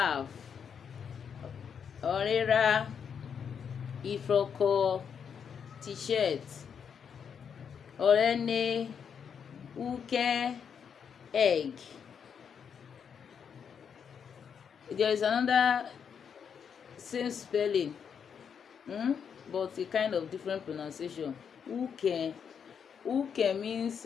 Ori-e, Ifro, t-shirt, Owaren, Ukewu, egg. There is another same spelling, but a kind of different pronunciation. Uke means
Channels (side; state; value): right; quieter; 7.2 dB